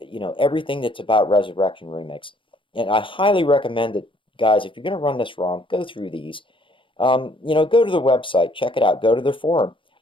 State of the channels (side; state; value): right; late; 0.25 ms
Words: that's about Resurrection Remix. And I highly recommend that, guys, if you're going to run this ROM, go through these. Go to the website, check it out, go to their forum,